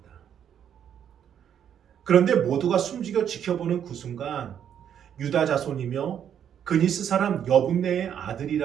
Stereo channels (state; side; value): quieter; left; 9.1 dB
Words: 그런데 모두가 숨죽여 지켜보는 그 순간 유다 자손이며 그니스 사람 여분네의